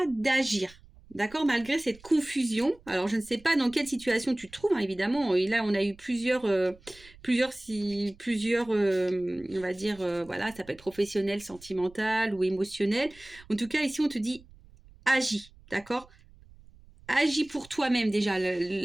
d'agir. D'accord, malgré cette confusion. Alors, je ne sais pas dans quelle situation tu te trouves, hein, évidemment. Et là, on a eu plusieurs, on va dire, voilà, ça peut être professionnel, sentimental ou émotionnel. En tout cas, ici, on te dit, agis, d'accord? Agis pour toi-même déjà.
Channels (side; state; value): right; noise; rumble, 24 dB below the sound